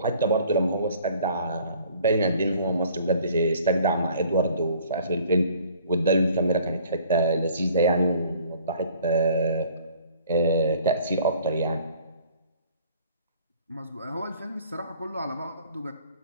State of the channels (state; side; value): inverted; both; correlation -0.55